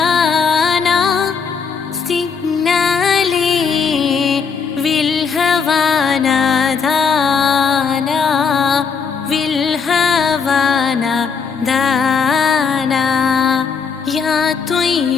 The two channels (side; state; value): right; quieter; 5.9 dB